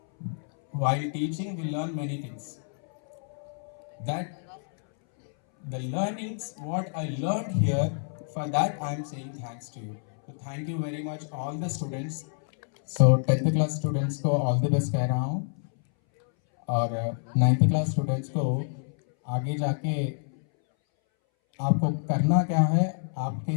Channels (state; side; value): silent; right; 59 dB below the other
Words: While teaching, we learn many things. That the learnings, what I learned here, for that I am saying thanks to you. So thank you very much all the students. So 10th class students को all the best कह रहा हूँ, और 9th class students को आगे जाके आपको करना क्या है,